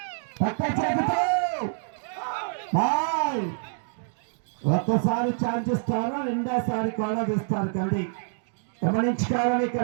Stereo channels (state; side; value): silent; left; digital silence